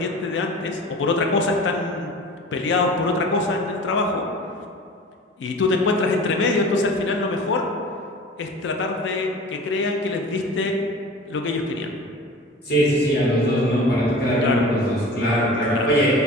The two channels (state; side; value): normal; both; correlation 0.39